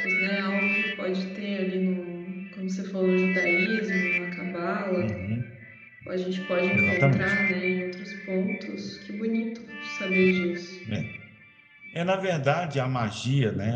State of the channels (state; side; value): identical; both; correlation 1.00